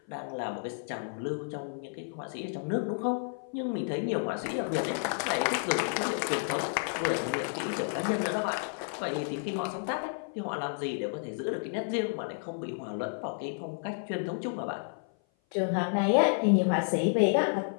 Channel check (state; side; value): silent; right; 55 dB below the other